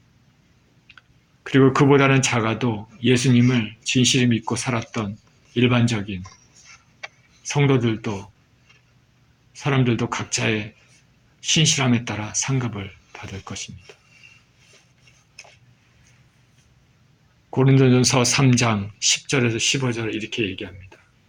그리고 그보다는 작아도 예수님을 진실히 믿고 살았던 일반적인 사람들도 각자의 신실함에 따라 상급을 받을 것입니다. 고린도전서 3장 10절에서 15절을 이렇게 얘기합니다.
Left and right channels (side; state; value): both; identical; correlation 1.00